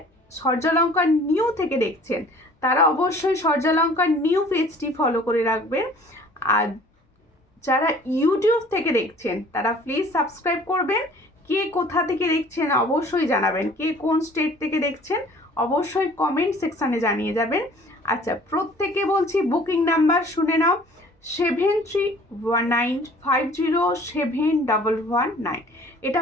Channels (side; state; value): both; normal; correlation 0.51